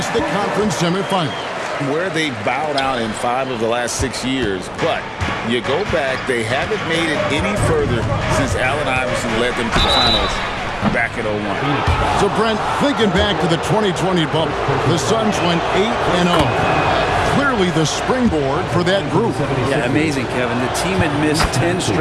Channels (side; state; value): both; identical; correlation 1.00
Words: the conference semifinal. Where they bowed out in 5 of the last 6 years. But you go back, they haven't made it any further since Allen Iverson led them to the finals back at 01. So, Brent, thinking back to the 2020 bubble, the Suns went 8-0. Clearly the springboard for that group. Yeah, amazing, Kevin. The team had missed 10